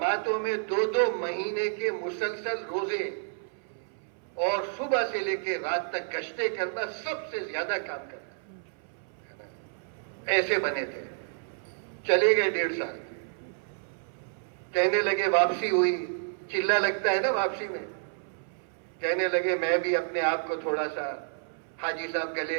میں 2-2 مہینے کے مسلسل روزے اور صبح سے لے کے رات تک گشتیں کرنا, سب سے زیادہ کام کرنا. ایسے بنے تھے. چلے گئے 1.5 سال. کہنے لگے واپسی ہوئی, چلہ لگتا ہے نا واپسی میں. کہنے لگے میں بھی اپنے آپ کو تھوڑا سا حاجی صاحب گلے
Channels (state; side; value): silent; left; 58 dB below the other